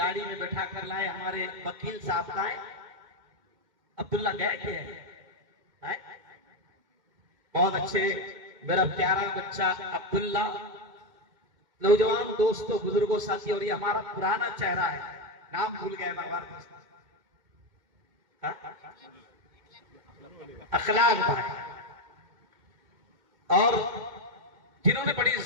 میں بٹھا کر لائے، ہمارے وکیل صاحب لائے، عبداللہ گئے تھے بہت اچھے، میرا پیارا بچہ عبداللہ، نوجوان دوستوں بزرگوں ساتھی، اور یہ ہمارا پرانا چہرہ ہے، نام بھول گئے بار اخلاق بھائی، اور جنہوں نے بڑی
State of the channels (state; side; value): late; left; 2.2 ms